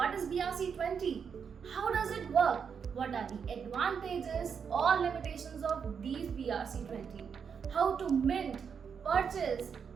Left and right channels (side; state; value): left; quieter; 6.7 dB